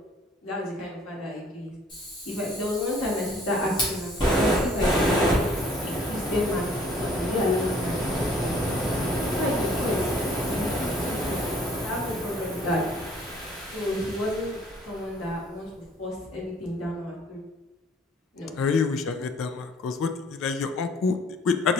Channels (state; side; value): normal; both; correlation 0.57